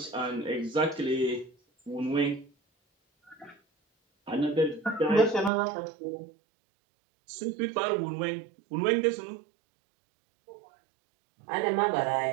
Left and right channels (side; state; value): left; drops out; at 5.5 s